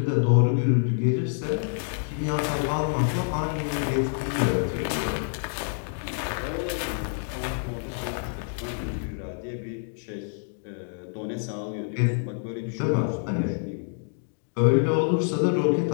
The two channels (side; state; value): right; silent; digital silence